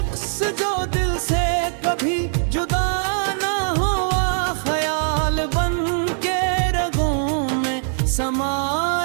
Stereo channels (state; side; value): silent; left; digital silence